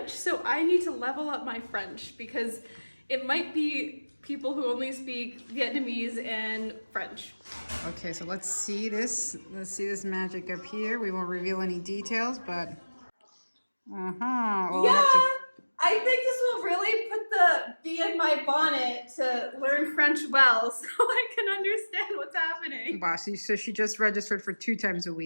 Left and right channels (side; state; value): both; inverted; correlation -1.00